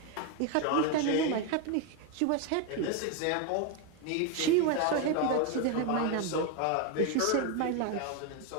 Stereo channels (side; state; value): both; different; correlation 0.01